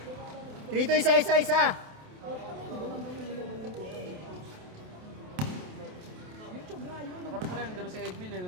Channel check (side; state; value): left; late; 28 ms